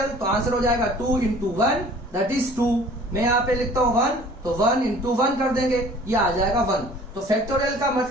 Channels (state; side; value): normal; both; correlation 0.50